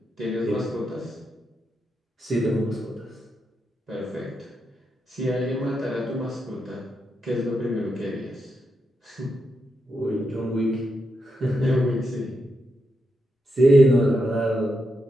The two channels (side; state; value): both; normal; correlation 0.84